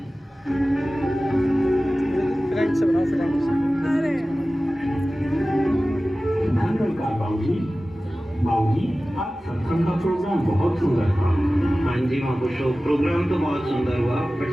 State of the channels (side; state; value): both; normal; correlation 0.96